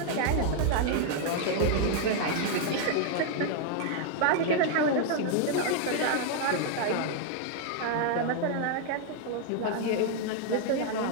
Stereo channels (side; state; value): both; different; correlation 0.00